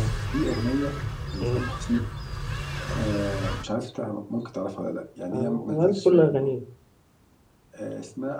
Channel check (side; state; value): both; identical; correlation 1.00